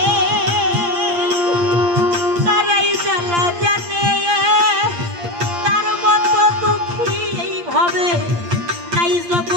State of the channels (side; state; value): left; late; 8.6 ms